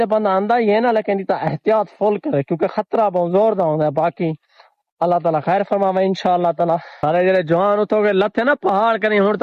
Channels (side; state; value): both; identical; correlation 1.00